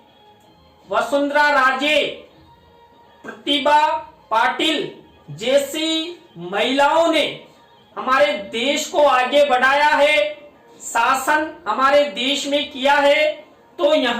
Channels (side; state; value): both; identical; correlation 1.00